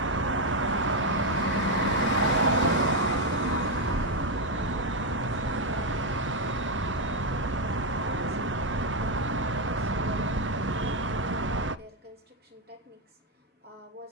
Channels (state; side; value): normal; both; correlation 0.04